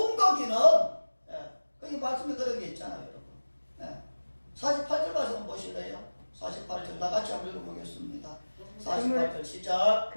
거기는, 거기 말씀에 그런 게 있잖아요, 여러분. 48절 말씀 보실래요? 48절 다 같이 한번 읽어보겠습니다. 48절 시작.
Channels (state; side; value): inverted; both; correlation -1.00